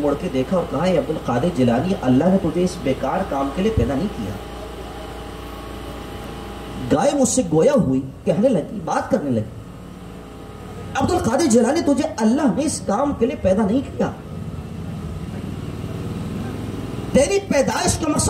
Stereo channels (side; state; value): both; identical; correlation 1.00